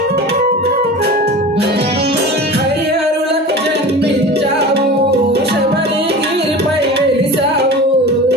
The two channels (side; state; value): both; normal; correlation 0.34